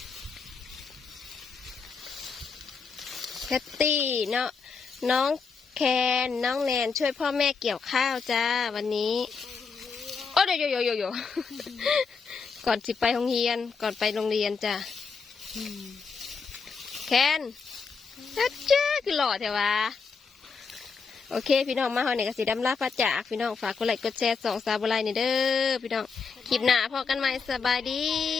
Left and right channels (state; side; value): quieter; right; 5.2 dB